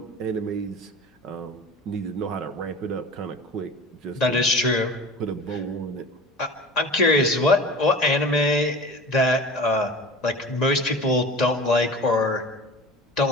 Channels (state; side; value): normal; both; correlation 0.37